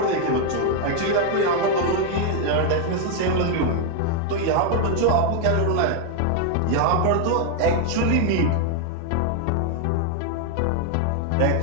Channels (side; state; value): both; different; correlation 0.00